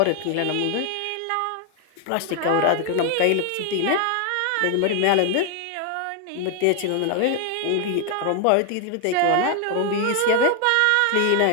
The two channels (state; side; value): different; both; correlation 0.00